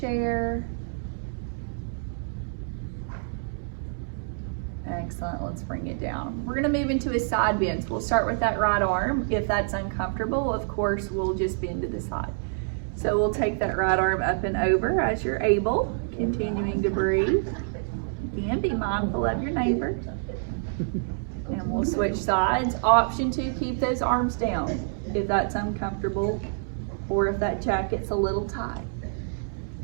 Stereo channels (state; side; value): silent; left; digital silence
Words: Excellent, let's bring it down. We're gonna move into a side bend. So we'll start with that right arm. If that's uncomfortable, of course, we'll just bend to the side. So we'll take that right arm up and over as you're able, continuing to breathe. Again, be mindful of your neighbor. And we'll switch sides. Option to keep those arms down if that's uncomfortable or if that jacket's a little tight.